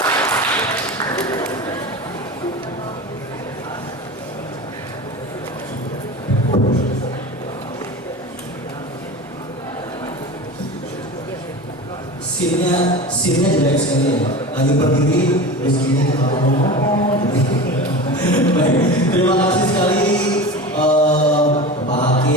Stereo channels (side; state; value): both; normal; correlation 0.30